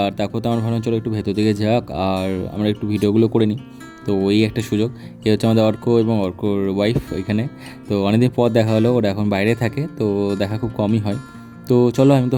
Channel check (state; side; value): identical; both; correlation 1.00